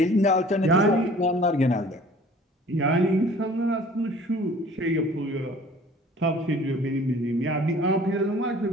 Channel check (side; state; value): both; normal; correlation 0.50